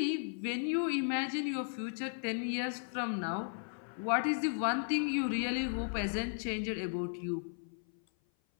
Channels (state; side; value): silent; right; 54 dB below the other